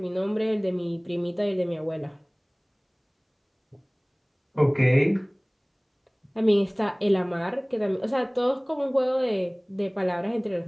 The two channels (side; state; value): both; identical; correlation 1.00